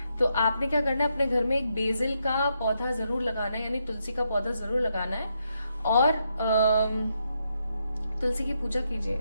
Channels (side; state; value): both; inverted; correlation -0.80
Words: तो आपने क्या करना है, अपने घर में एक बेसिल का पौधा जरूर लगाना है, यानी तुलसी का पौधा जरूर लगाना है, और तुलसी की पूजा कीजिए,